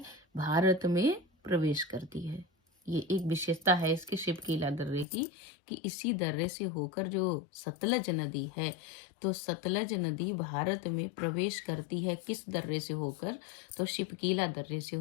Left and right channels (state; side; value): drops out; right; at 5.1 s